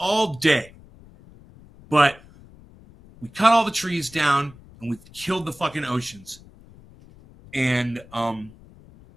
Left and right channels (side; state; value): left; noise; rumble, 23 dB below the sound